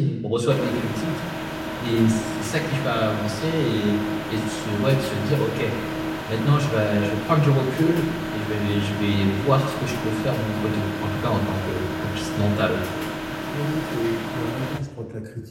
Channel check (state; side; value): identical; both; correlation 1.00